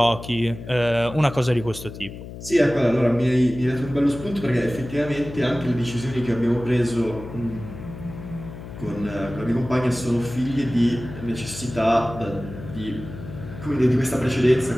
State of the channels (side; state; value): left; noise; hum, 12 dB below the sound